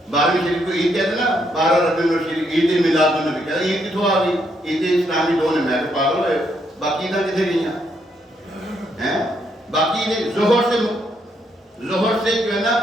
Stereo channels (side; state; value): both; normal; correlation 0.75